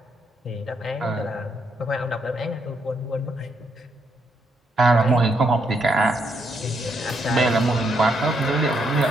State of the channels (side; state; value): both; normal; correlation 0.76